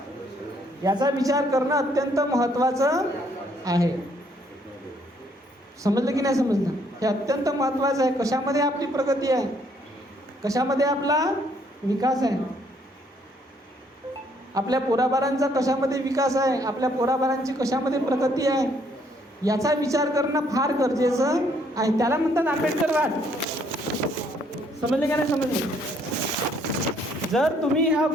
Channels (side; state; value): both; normal; correlation 0.67